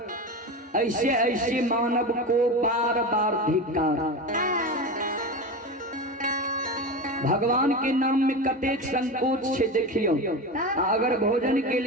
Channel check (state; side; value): normal; both; correlation 0.24